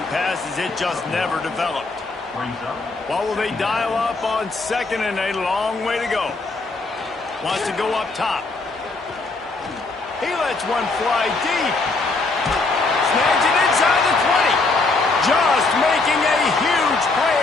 pass, as it just never developed. What will they dial up on 2nd and a long way to go? Wants to go up top. He lets one fly deep. Snags it inside the 20. Just making a huge play,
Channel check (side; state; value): right; quieter; 3.6 dB